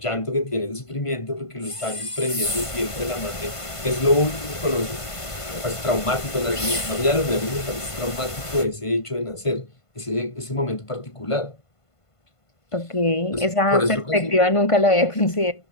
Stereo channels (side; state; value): right; late; 1.5 ms